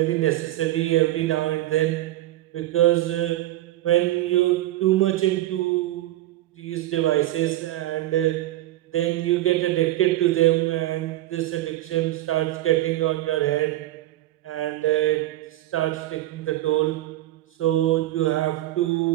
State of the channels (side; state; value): left; quieter; 15.4 dB